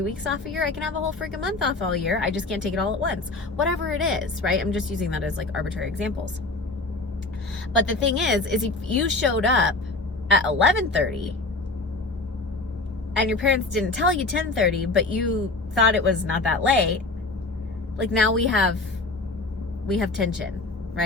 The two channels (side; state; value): right; quieter; 3.2 dB